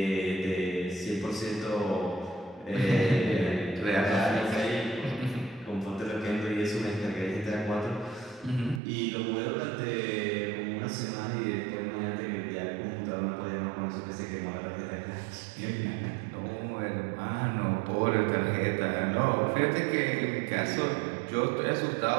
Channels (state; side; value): drops out; left; at 8.8 s